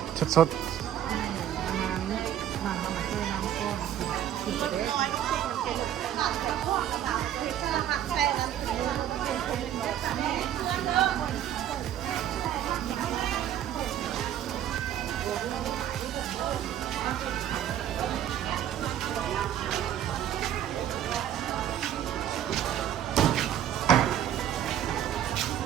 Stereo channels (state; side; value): quieter; left; 10.8 dB